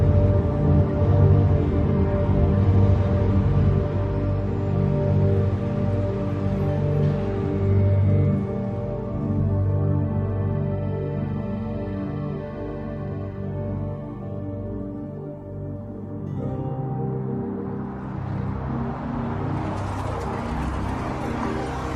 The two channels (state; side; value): identical; both; correlation 1.00